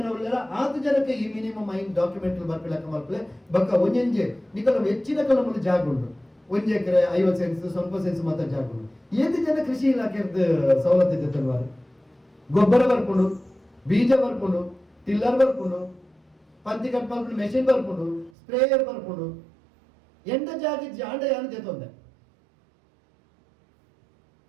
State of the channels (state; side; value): drops out; left; at 18.3 s